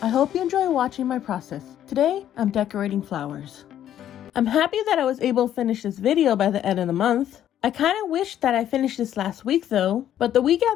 I hope you enjoy watching my process. Today, I'm decorating flowers. I'm happy that I was able to finish this video by the end of the month. I kind of wish that I finished this last week though, but the week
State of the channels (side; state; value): right; quieter; 11.0 dB